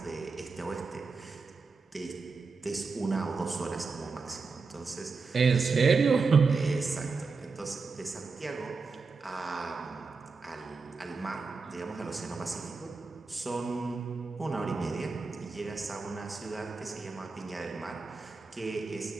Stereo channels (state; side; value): quieter; left; 4.5 dB